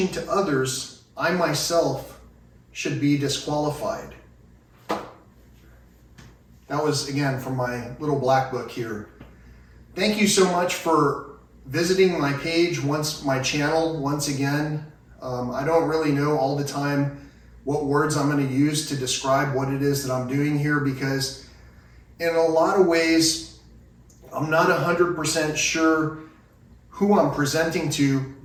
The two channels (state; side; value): identical; both; correlation 1.00